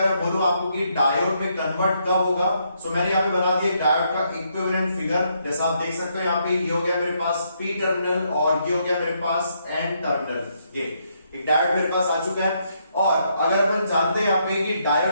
मैं बोलूं आपको कि डायोड में कन्वर्ट कब होगा, सो मैंने यहाँ पे बना दिया डायोड का इक्विवेलेंट फिगर। जैसा आप देख सकते हो यहाँ पे ये हो गया मेरे पास पी टर्मिनल और ये हो गया मेरे पास एन टर्मिनल। ये एक डायोड मेरे पास आ चुका है। और अगर अपन जानते हैं यहाँ पे कि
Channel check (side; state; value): both; inverted; correlation -0.75